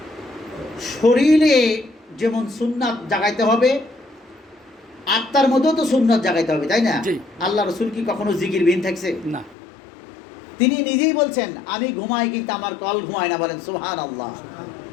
শরীরে যেমন সুন্নাত জাগাইতে হবে, আত্মার মধ্যেও তো সুন্নাত জাগাইতে হবে, তাই না? আল্লাহ রসুল কি কখনো জিকির বিহীন থাকছে? না। তিনি নিজেই বলছেন, আমি ঘুমাই কিন্তু আমার কল ঘুমায় না, বলেন সুবহানাল্লাহ।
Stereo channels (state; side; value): drops out; right; at 9.6 s